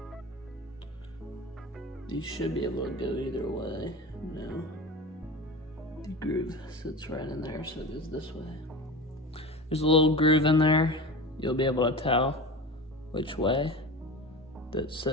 These should be able to go either way. No. The groove sits right in there, so it goes this way. There's a little groove in there. You'll be able to tell which way. That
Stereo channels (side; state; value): both; normal; correlation 0.30